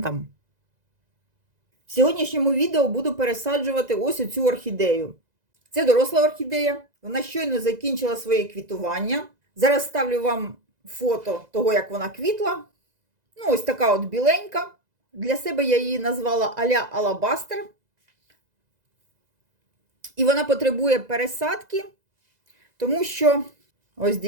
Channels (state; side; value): late; left; 2.0 ms